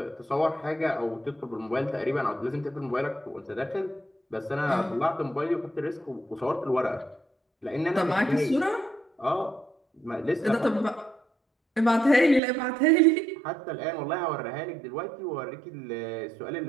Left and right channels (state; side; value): drops out; left; at 12.4 s